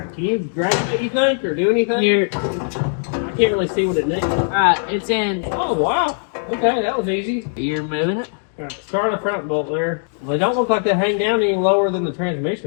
you grab it, you think, or do anything? Here. I can't really see what it needs. Alright, it's in. Oh, wow. Okay, that was easy. You're moving it? All right, start the front bolt there. Well, they don't look like they hang down any lower than the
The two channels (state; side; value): silent; right; digital silence